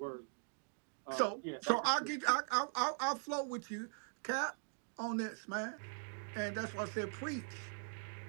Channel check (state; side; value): silent; left; 50 dB below the other